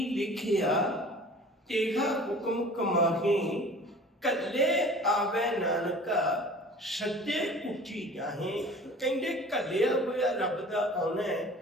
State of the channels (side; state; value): both; normal; correlation 0.45